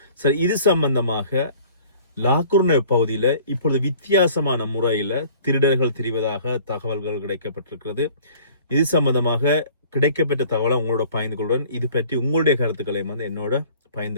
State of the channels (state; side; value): inverted; both; correlation -0.50